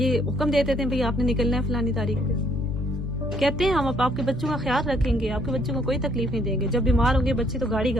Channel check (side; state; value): both; normal; correlation 0.66